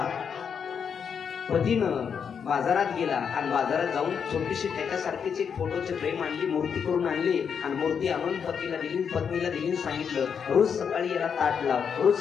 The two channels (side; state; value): right; quieter; 7.0 dB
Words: पतीनं बाजारात गेला आणि बाजारात जाऊन छोटीशी त्याच्यासारखीच एक फोटोची फ्रेम आणली, मूर्ती करून आणली आणि मूर्ती आणून पतीला दिली, पत्नीला दिली. सांगितलं, रोज सकाळी याला ताट लाव, रोज